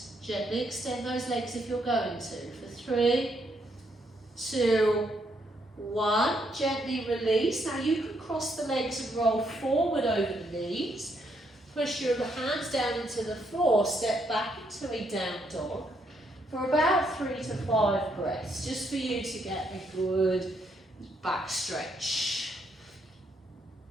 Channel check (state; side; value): normal; both; correlation 0.74